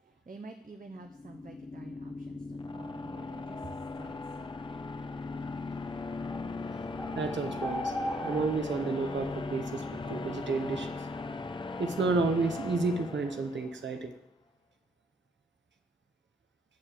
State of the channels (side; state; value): both; normal; correlation 0.68